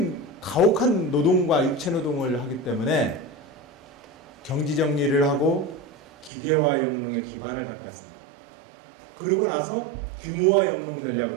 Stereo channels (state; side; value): drops out; left; at 6.3 s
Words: 가혹한 노동과 육체노동을 하기 때문에 경지정리를 하고 기계화 영농에 기반을 닦았습니다. 그러고 나서 규모화 영농